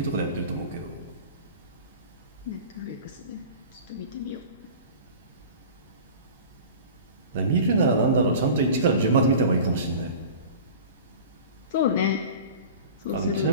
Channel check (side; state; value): both; inverted; correlation -0.38